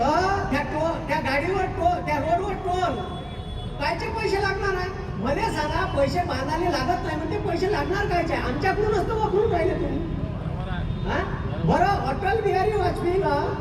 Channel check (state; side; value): identical; both; correlation 1.00